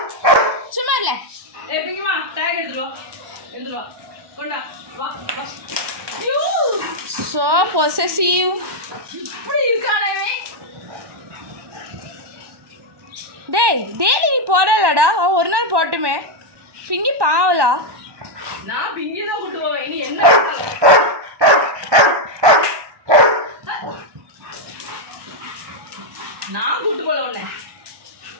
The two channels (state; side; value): late; left; 1.2 ms